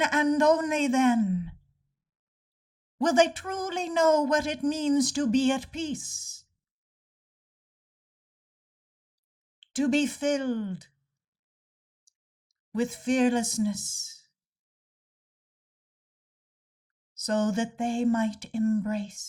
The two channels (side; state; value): both; identical; correlation 1.00